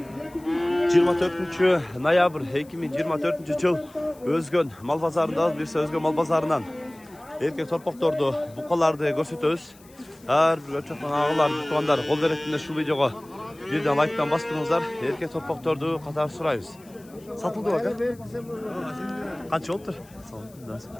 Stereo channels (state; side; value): noise; left; hiss, 26 dB below the sound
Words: 24 noyabr 2024 yıl Özgön mal pazarında birse Özgön mal pazarından erkek torpaqtordu, buqalardı görsetөбүz. Her bir ölçekten ağılar, tutanlar, kol veretinde şu videoga birden like'tan bastırыңызlar. Erkek torpaqtordu qatar surayız. Satıldı bak ha? Kaç oldu?